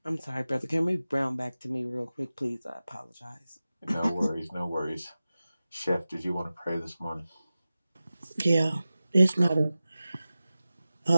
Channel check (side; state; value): both; inverted; correlation -0.95